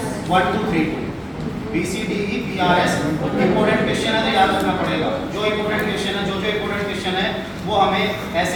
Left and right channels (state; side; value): identical; both; correlation 1.00